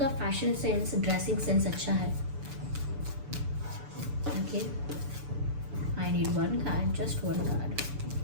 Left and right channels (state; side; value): late; left; 6.9 ms